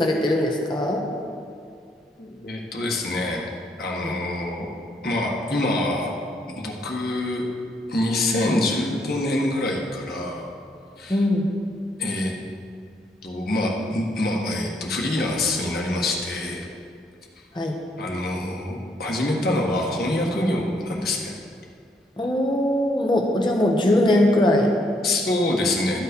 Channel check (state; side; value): normal; both; correlation 0.72